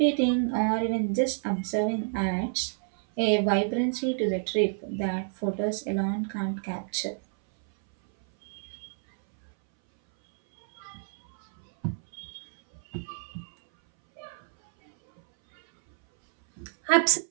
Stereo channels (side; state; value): left; silent; 59 dB below the other